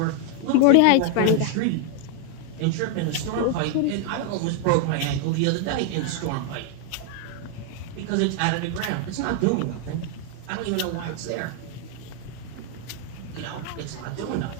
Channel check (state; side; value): different; both; correlation 0.00